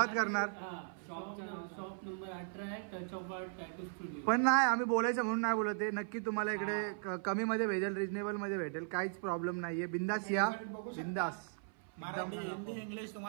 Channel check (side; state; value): left; silent; 53 dB below the other